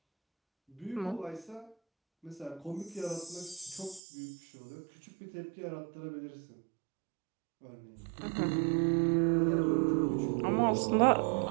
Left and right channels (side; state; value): left; drops out; at 4.0 s